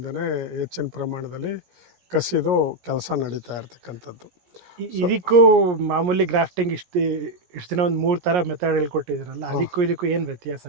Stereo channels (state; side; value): late; left; 17 ms